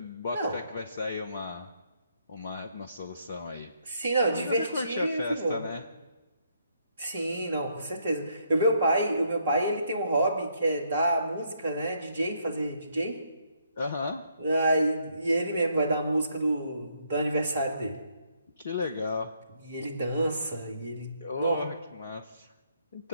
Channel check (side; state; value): both; inverted; correlation -0.72